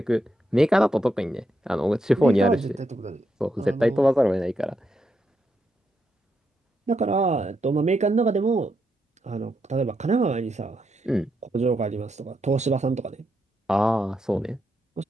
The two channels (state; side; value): normal; both; correlation 0.82